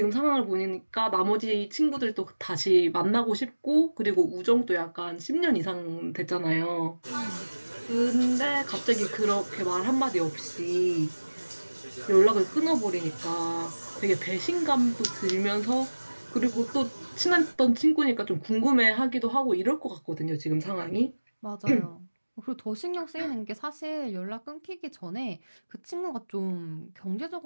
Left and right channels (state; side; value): inverted; both; correlation -1.00